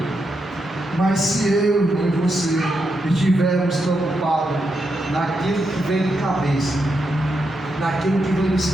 Mas se eu e você estivermos preocupados naquilo que vem de cabeça, naquilo que vem do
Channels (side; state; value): both; normal; correlation 0.84